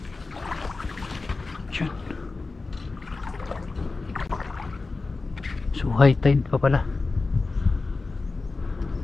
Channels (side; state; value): right; quieter; 3.7 dB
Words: Yun. So high tide pa pala.